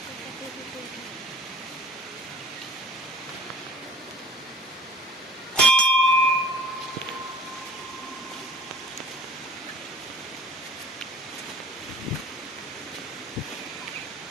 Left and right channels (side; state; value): both; normal; correlation 0.47